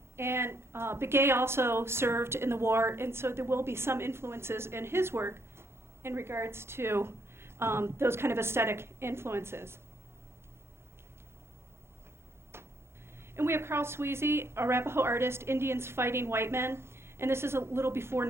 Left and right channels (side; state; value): left; late; 0.12 ms